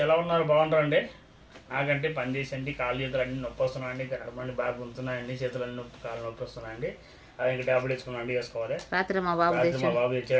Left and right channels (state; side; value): identical; both; correlation 1.00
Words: ఎలా ఉన్నారు? బాగుంటారండి? నాకంటే పని చేసండి కాళ్ళు చేతులు అన్నీ నొప్పి వస్తున్నాయండి, కడమండి బాగా గుంతున్నాయండి, చేతులు అన్నీ నొప్పి కాళ్ళు నొప్పి వస్తున్నాయండి. అది ఇంకా ట్యాబ్లెట్ వేసుకున్నాండి, వేసుకోవాలి. రాత్రి మా బాబు